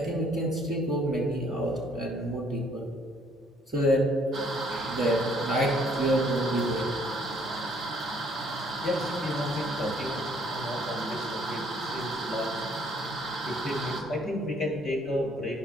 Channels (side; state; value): both; normal; correlation 0.63